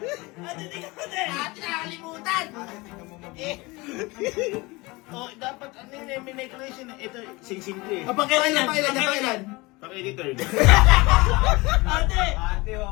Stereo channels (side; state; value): right; quieter; 23.6 dB